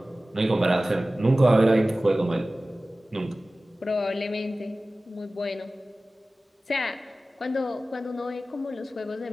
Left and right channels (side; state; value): both; normal; correlation 0.97